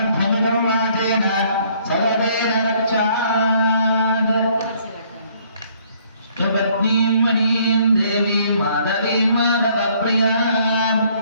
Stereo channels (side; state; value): both; inverted; correlation -0.63